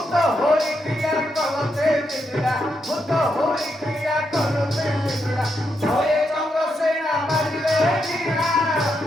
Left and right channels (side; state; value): both; normal; correlation 0.82